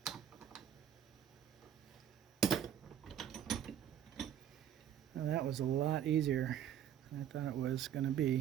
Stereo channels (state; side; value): quieter; left; 9.8 dB